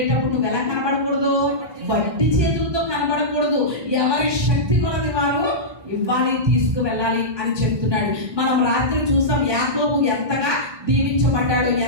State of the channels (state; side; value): late; left; 1.2 ms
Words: నువ్వు ఎలా కనబడకూడదు? వట్టి చేతులతో కనబడకూడదు. ఎవరి శక్తి కొలది వారు ఇవ్వాలి, తీసుకువెళ్ళాలి అని చెప్తున్నాడు. మనం రాత్రి చూసాం యాకోబు ఎంతగా దీవించబడ్డాడు,